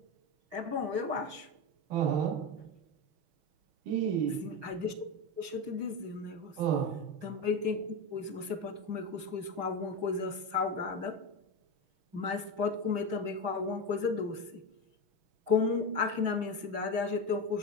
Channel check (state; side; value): late; left; 6.2 ms